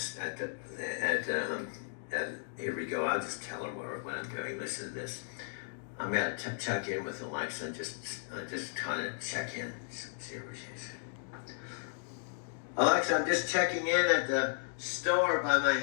here we go. I'll just tell her what I'm doing. Listen to this. I'm gonna check in with Alexa and just kind of check in. See where she is. Alexa, I'm just checking in at the store by my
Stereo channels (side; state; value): right; silent; digital silence